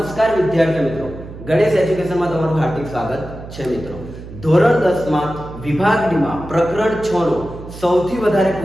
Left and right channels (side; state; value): right; noise; hum, 14 dB below the sound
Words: વિદ્યાર્થી મિત્રો, ગણેશ એજ્યુકેશનમાં તમારું હાર્દિક સ્વાગત છે મિત્રો। ધોરણ 10 માં વિભાગ ડી માં પ્રકરણ 6 નો સૌથી વધારે